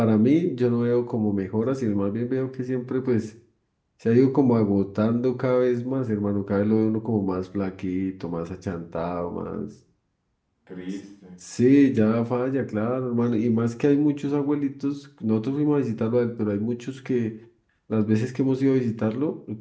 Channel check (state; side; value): identical; both; correlation 1.00